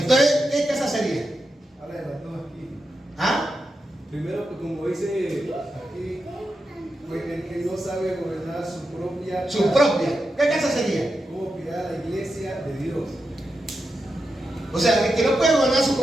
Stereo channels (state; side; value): normal; both; correlation 0.88